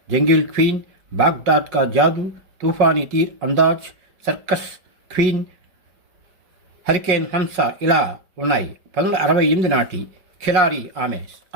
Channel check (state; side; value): late; left; 5.1 ms